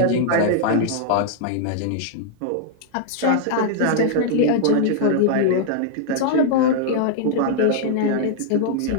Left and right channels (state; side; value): different; both; correlation -0.01